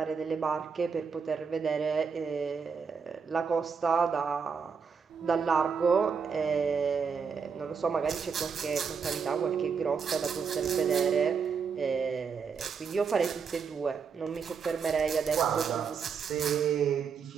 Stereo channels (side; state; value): left; quieter; 6.0 dB